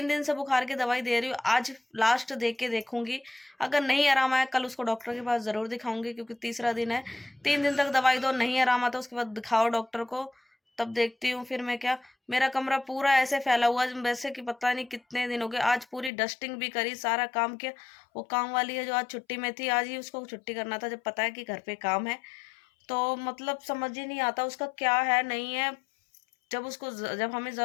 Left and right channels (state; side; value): drops out; right; at 16.1 s